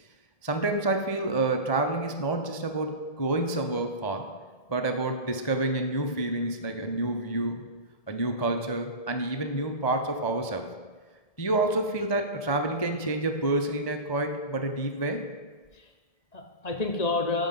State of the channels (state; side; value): late; right; 1.7 ms